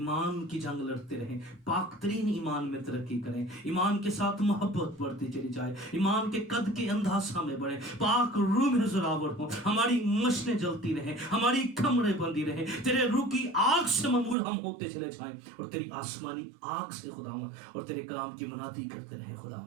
کی جنگ لڑتے رہیں، پاک ترین ایمان میں ترقی کریں، ایمان کے ساتھ محبت بڑھتی چلی جائے، ایمان کے قد کے اندھاسا میں بڑھیں، پاک روح میں زراور ہوں، ہماری مشنیں جلتی رہیں، ہماری کمریں بندی رہیں، تیرے روح کی آگ سے ممور ہم ہوتے چلے جائیں، اور تیری آسمانی آگ سے خداوند اور تیرے کلام کی منادی کرتے رہیں۔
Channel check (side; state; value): left; drops out; at 14.4 s